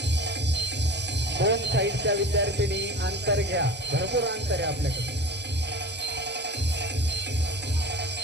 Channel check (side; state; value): both; normal; correlation 0.36